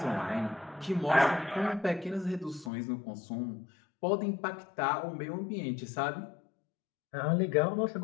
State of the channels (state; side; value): drops out; right; at 2.7 s